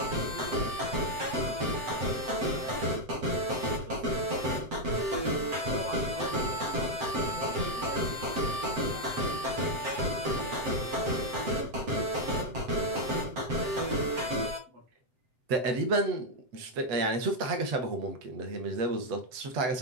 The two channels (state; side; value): late; left; 7.8 ms